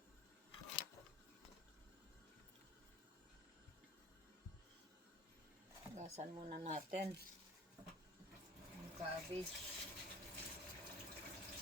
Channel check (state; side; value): normal; both; correlation 0.45